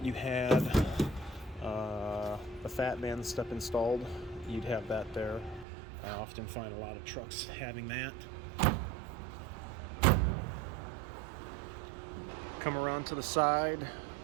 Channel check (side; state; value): left; drops out; at 5.7 s